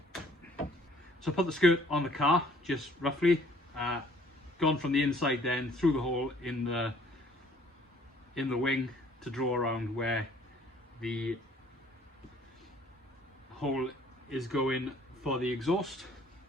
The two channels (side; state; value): both; normal; correlation 0.58